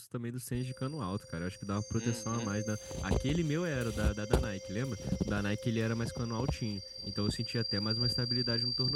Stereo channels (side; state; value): both; identical; correlation 1.00